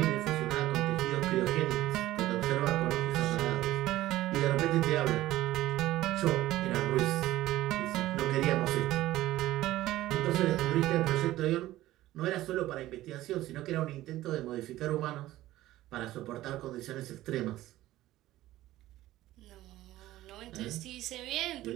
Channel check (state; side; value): quieter; left; 15.5 dB